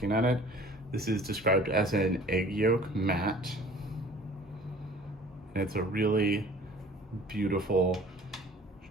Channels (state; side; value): normal; both; correlation 0.48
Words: at it, this is described as an egg yolk matte. And it's a really beautiful